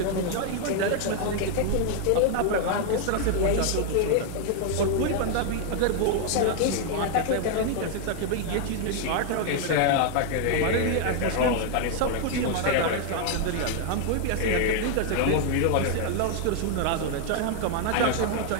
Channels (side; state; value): both; different; correlation 0.00